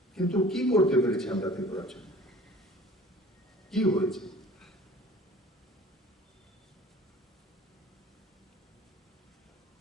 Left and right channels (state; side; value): normal; both; correlation 0.48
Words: কিন্তু কি করতে পেরেছি আমরা ত্রিপুরার জন্য? কি হয়েছে?